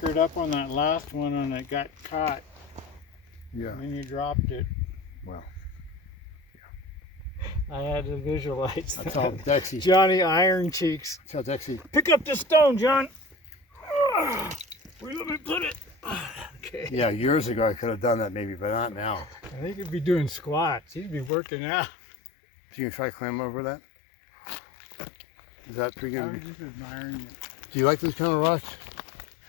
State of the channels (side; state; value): right; drops out; at 21.3 s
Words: up on that last one and it got caught. Yeah. And you dropped it. Well. I had to visualize That's all Dexy. Johnny Iron Cheeks. That's all Dexy. Pick up the stone, John. Where let me put it? Okay. Yeah, years ago I could have done that maybe, but not now. I think he'd be doing squats. He'd be working out. So you can try climb over that? Is that pretty I was good? just admiring it. Do you like those kind of rocks?